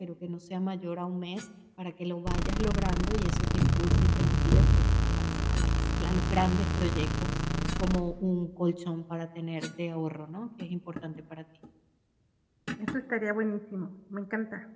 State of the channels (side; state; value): both; identical; correlation 1.00